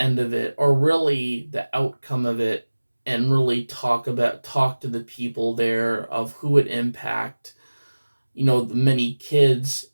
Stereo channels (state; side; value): inverted; both; correlation -1.00